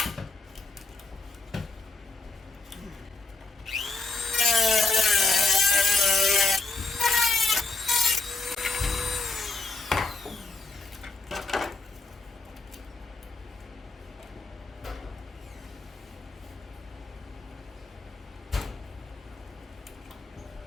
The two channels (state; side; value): quieter; right; 3.5 dB